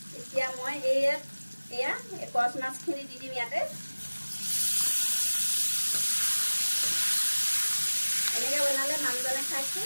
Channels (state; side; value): inverted; both; correlation -1.00